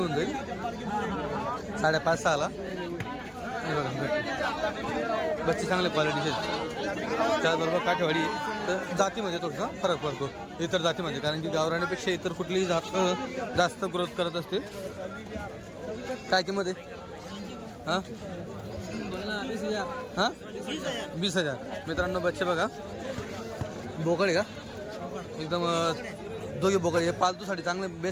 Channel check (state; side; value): identical; both; correlation 1.00